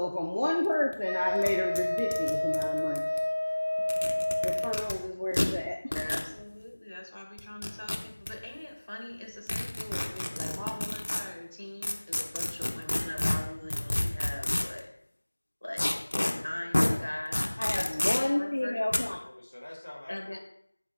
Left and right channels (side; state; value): both; inverted; correlation -1.00